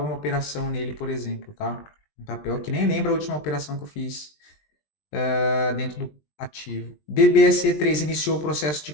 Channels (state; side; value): late; right; 20 ms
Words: operação nele, por exemplo, tá? Um papel que nem lembra a última operação que eu fiz dentro do ativo. BBSE3 iniciou o processo de